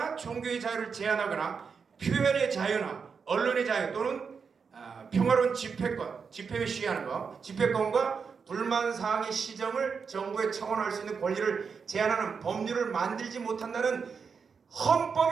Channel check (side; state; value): left; quieter; 5.8 dB